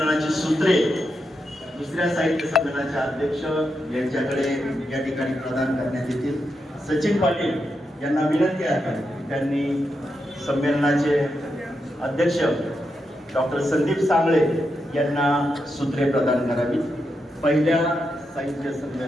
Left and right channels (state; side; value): normal; both; correlation 0.85